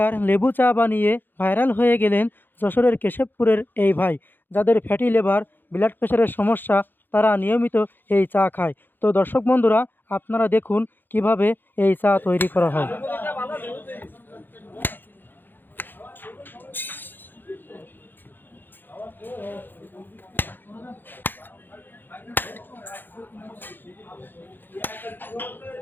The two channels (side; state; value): right; late; 0.093 ms